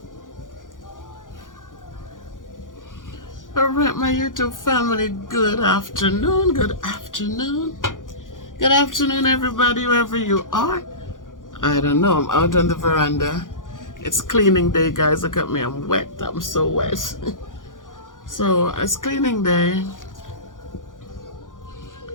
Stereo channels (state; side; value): late; right; 0.88 ms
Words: All right, my YouTube family, good afternoon. Good afternoon. Good afternoon, everybody, wherever you are. I don't know, I'm out on the veranda. It's cleaning day, guys. Look at me, I'm wet. I'm so wet. So, it's cleaning day.